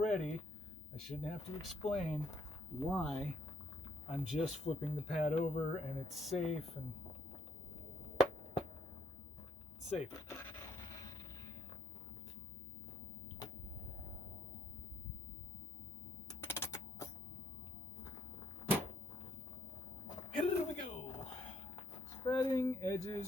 I shouldn't have to explain why I'm just flipping the pad over and it's safe and safe. Here we go. Spreading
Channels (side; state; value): both; normal; correlation 0.70